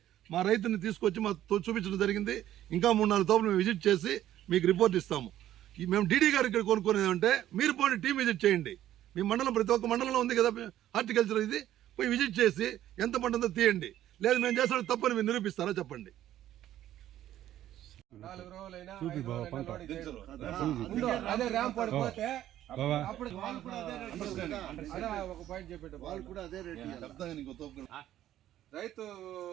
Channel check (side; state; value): left; quieter; 12.5 dB